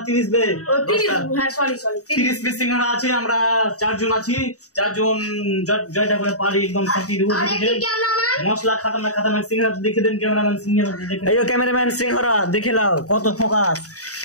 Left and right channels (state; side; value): late; right; 0.66 ms